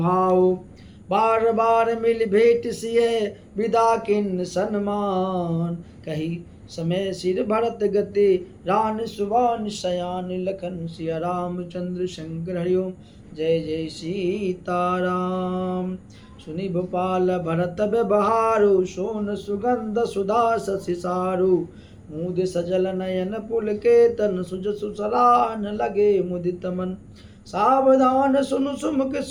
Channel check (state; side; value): identical; both; correlation 1.00